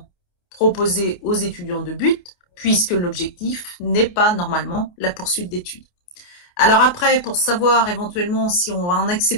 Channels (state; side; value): late; right; 28 ms